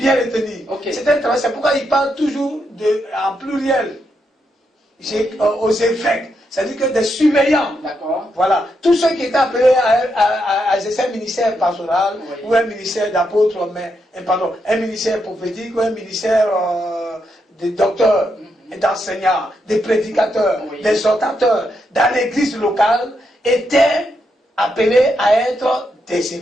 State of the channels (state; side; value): normal; both; correlation 0.81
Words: le tenir. C'est un travail, c'est pourquoi il parle toujours en pluriel, aux évêques. C'est-à-dire que des surveillants, voilà, tous ceux qui étaient appelés à exercer un ministère pastoral, ou un ministère d'apôtre, un ministère prophétique, ou un ministère de docteurs, d'enseignants, de prédicateurs, d'exhortateurs, dans l'église locale, étaient appelés à être des